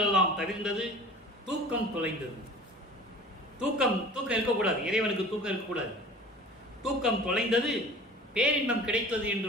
எல்லாம் தவிர்ந்தது, தூக்கம் தொலைந்தது. தூக்கம் இருக்கக்கூடாது, இறைவனுக்கு தூக்கம் இருக்கக்கூடாது. தூக்கம் தொலைந்தது, பேரின்பம் கிடைத்தது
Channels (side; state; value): both; normal; correlation 0.43